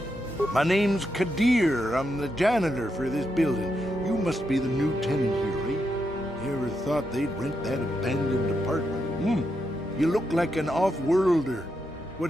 My name's KotOR. I'm the janitor for this building. You must be the new tenant here, eh? Ever thought they'd rent that abandoned apartment? You look like an off-worlder.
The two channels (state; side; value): normal; both; correlation 0.83